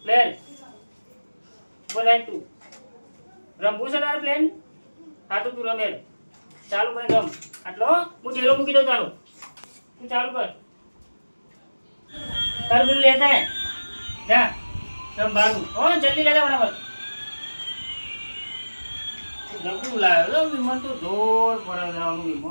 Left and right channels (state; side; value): inverted; both; correlation -1.00